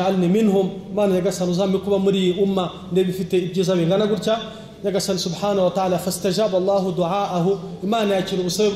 minhum, Mana Nyagasani uzampe kuba muri umma ndebe ifite ibyiza bingana gutya. Nyagasani subhanahu wa ta'ala fastajaba Allahu du'aahu, Imana yakira ubusabe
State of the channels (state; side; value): identical; both; correlation 1.00